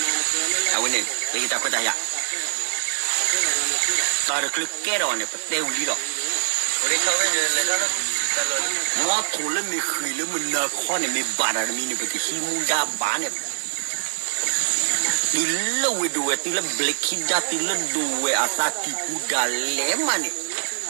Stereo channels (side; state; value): left; silent; digital silence